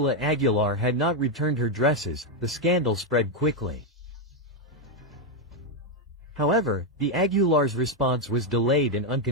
Aguilar had not returned her dresses, the scandal spread quickly. However, the Aguilars' response was delayed and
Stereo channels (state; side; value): normal; both; correlation 0.03